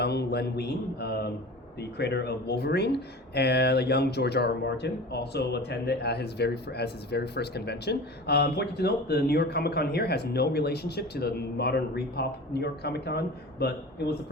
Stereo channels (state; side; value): normal; both; correlation 0.36